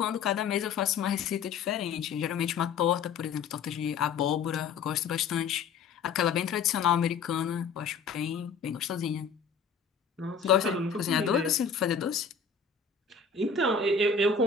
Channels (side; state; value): right; quieter; 5.7 dB